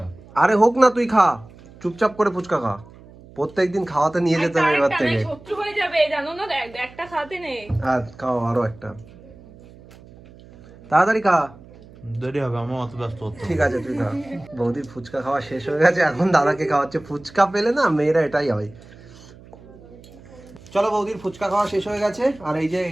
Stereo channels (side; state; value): right; noise; hum, 22 dB below the sound